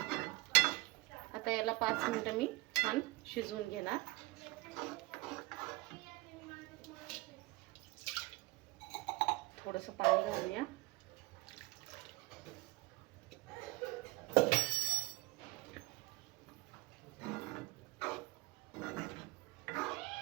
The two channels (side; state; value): left; quieter; 21.8 dB